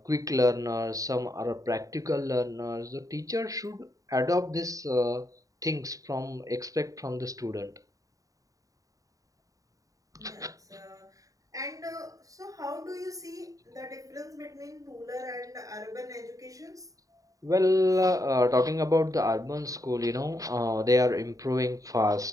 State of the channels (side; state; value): left; late; 0.16 ms